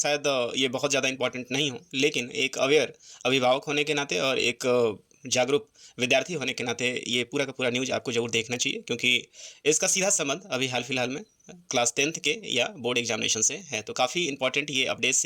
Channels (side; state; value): both; identical; correlation 1.00